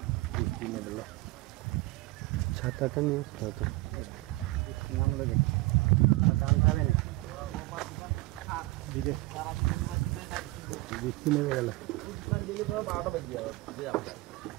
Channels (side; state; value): left; quieter; 20.5 dB